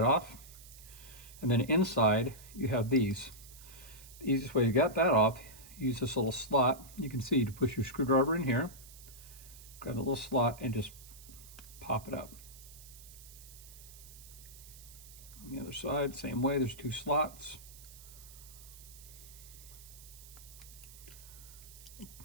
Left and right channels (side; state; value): right; noise; hiss, 18 dB below the sound